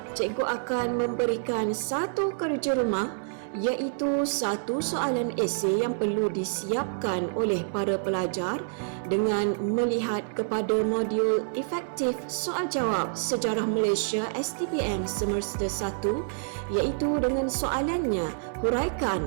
cikgu akan memberikan satu kerja rumah, iaitu satu soalan esei yang perlu disiapkan oleh para pelajar dengan melihat kepada modul efektif soal jawab Sejarah Malaysia STPM semester 1, iaitu dengan soalannya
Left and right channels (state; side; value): silent; left; 60 dB below the other